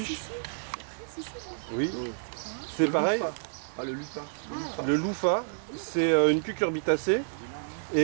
Oui. C'est pareil. Ah, le lupa. Le louffa, c'est une cucurbitacée.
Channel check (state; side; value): silent; left; digital silence